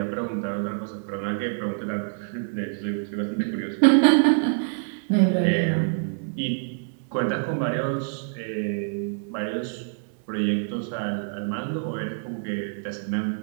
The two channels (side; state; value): left; silent; 61 dB below the other